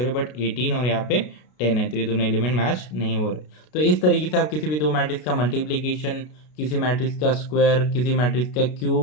हैं, बट 18 और यहाँ पे 10 है, तो ये दोनों एलिमेंट मैच नहीं हो रहे। तो इस तरीके से आप किसी भी दो मैट्रिक्स का मल्टीप्लीकेशन, किसी मैट्रिक्स का स्क्वायर, किसी मैट्रिक्स का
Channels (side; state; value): right; late; 33 ms